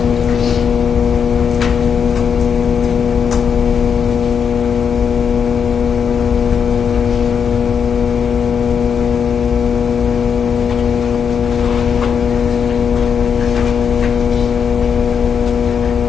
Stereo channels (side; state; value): right; quieter; 6.9 dB